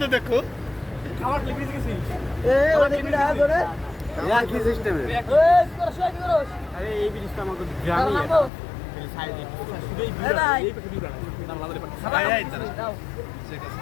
দেখো খাবার ব্রিজ গেছি কি সিস্টেমে আরে এই ব্রিজটা আমাকে গ্রামে সাইডে শুধুই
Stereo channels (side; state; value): right; drops out; at 8.5 s